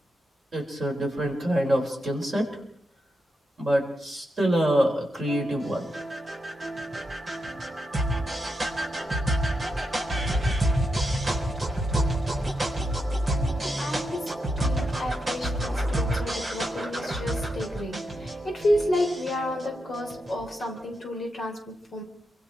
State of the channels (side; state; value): both; normal; correlation 0.85